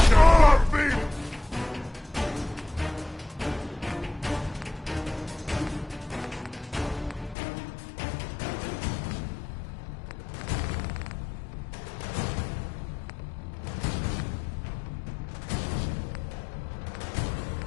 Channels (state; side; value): drops out; right; at 7.4 s